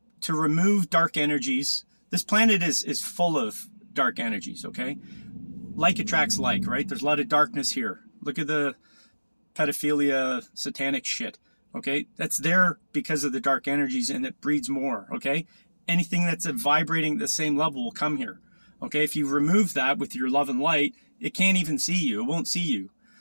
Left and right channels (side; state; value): both; inverted; correlation -1.00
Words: remove dark energies. This planet is full of dark energies, okay? Like attracts like, right? There's a lot of darkness here. Look at the pedophilia, satanic shit, okay? That's there because of the dark energies, and it breeds more, okay? Anything that's vibrating at the same level will come here, okay? If you remove that with your love and light, it can't even see you. It won't see you,